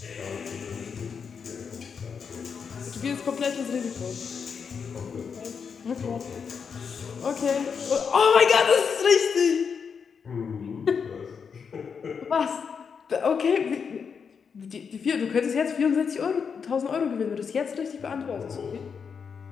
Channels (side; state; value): right; quieter; 6.3 dB